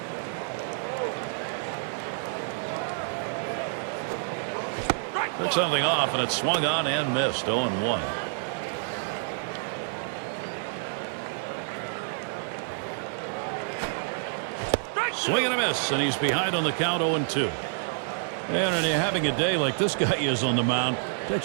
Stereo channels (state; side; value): silent; left; digital silence